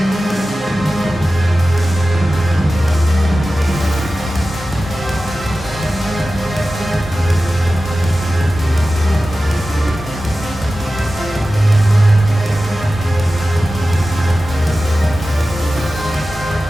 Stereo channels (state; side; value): normal; both; correlation 0.95